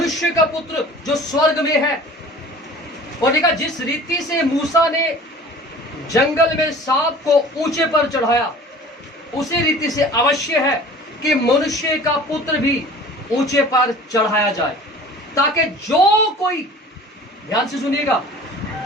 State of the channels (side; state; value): both; normal; correlation 0.44